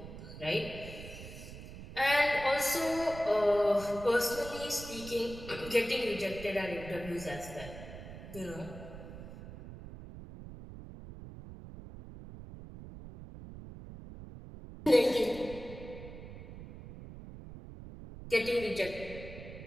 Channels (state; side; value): noise; right; rumble, 13 dB below the sound